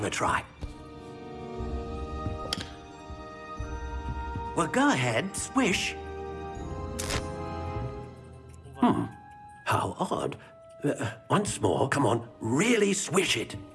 a try. Well, go ahead, swish. How odd. Once more, come on, really swish it.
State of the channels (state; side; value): identical; both; correlation 1.00